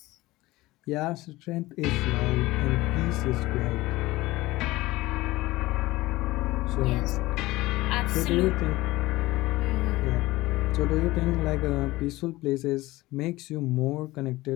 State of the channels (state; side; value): quieter; right; 19.0 dB